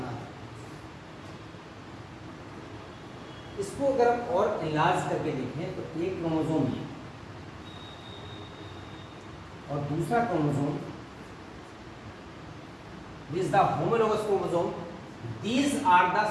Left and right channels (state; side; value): identical; both; correlation 1.00